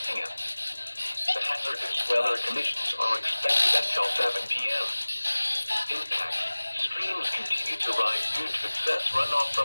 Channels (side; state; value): both; inverted; correlation -1.00